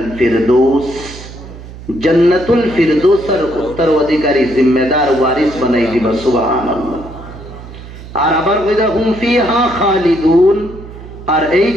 ফিরদৌস, জান্নাতুল ফিরদৌসের উত্তর অধিকারী জিম্মেদার ওয়ারিস বানাই দিবা। সুবহানাল্লাহ। আর আবার কইদা হুম ফিহা খালিদুন, আর এই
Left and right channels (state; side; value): noise; right; hum, 15 dB below the sound